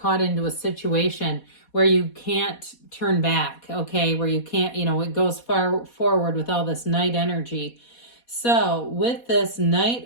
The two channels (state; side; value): late; right; 4.2 ms